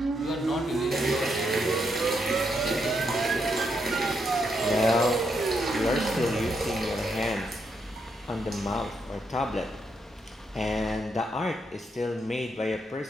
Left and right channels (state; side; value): normal; both; correlation 0.79